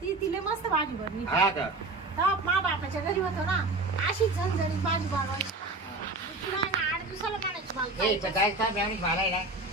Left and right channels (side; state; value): left; quieter; 3.1 dB